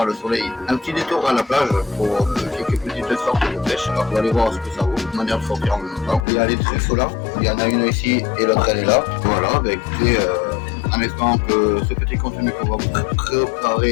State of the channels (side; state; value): right; drops out; at 6.2 s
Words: le soleil, un petit détour à la plage pour quelques petites sorties de pêche. Alors on va aller voir ce que ça vaut, manière de sortir en même temps. Il y a les truffes là, il y en a une ici et l'autre elle est là. Voilà, bah écoutez, en espérant que ce petit contenu qu'on va vous